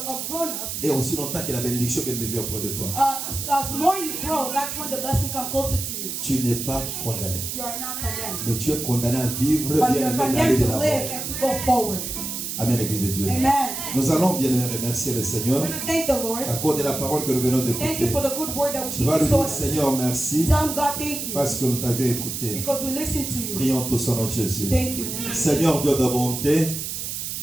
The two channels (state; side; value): noise; right; hiss, 5 dB below the sound